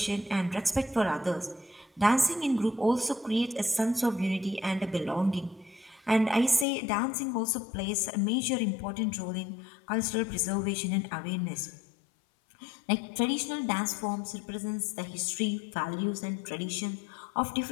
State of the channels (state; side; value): drops out; right; at 6.7 s